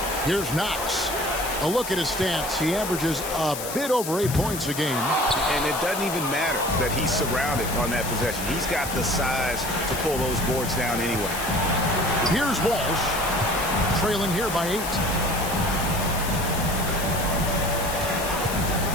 Here's Knox. A look at his stats. He averages a bit over 8 points a game. And it doesn't even matter that he's surrounded on that possession. He's got the size to pull those boards down anyway. Here's Walsh, trailing here by 8.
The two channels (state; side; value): noise; left; hiss, 7 dB below the sound